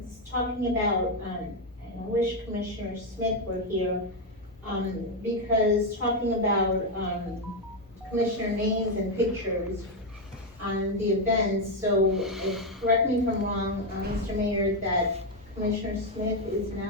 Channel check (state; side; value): normal; both; correlation 0.05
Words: talking about, and I wish Commissioner Smith were here, because talking about, commissioner names and pictures on the events, so correct me if I'm wrong, Mr. Mayor, that Commissioner Smith is